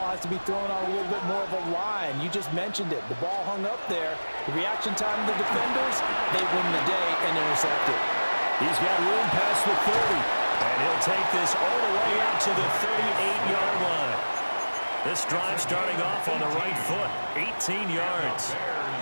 has to be thrown on a little bit more of a line. You just mentioned it. The ball hung up there. The reaction time of the defenders, they win the day and intercept it. He's got room past the 30, and he'll take this all the way up to the 38-yard line. This drive starting off on the right foot, 18 yards.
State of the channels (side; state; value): both; inverted; correlation -1.00